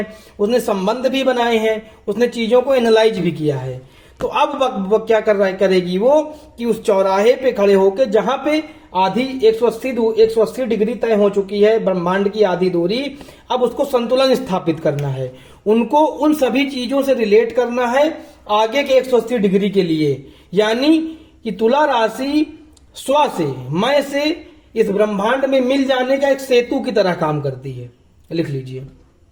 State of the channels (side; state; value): both; identical; correlation 1.00